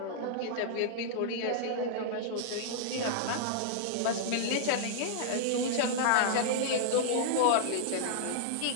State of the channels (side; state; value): both; different; correlation -0.02